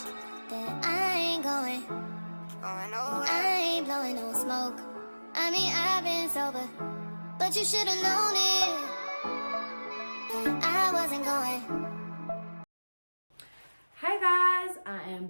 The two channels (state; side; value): inverted; both; correlation -1.00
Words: that I ain't going nowhere. I ain't blowing no smoke. I mean, I've been sober, but you should've known it. I wasn't going. Hi guys, I